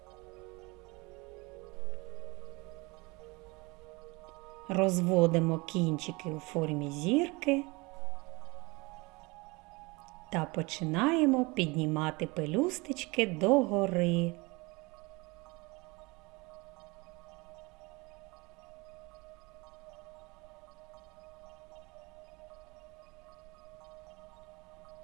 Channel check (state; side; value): quieter; left; 25.6 dB